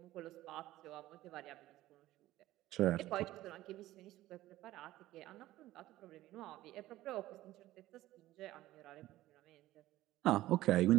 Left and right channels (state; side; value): quieter; left; 15.7 dB